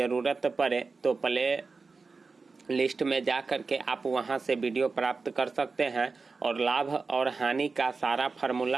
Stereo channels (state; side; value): quieter; left; 4.3 dB